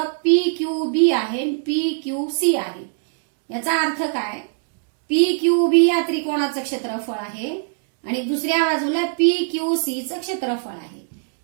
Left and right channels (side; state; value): left; silent; 64 dB below the other